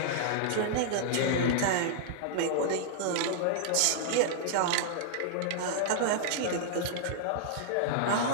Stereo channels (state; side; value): different; both; correlation -0.01